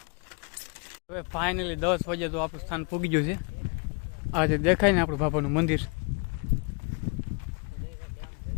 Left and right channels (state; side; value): quieter; right; 32.4 dB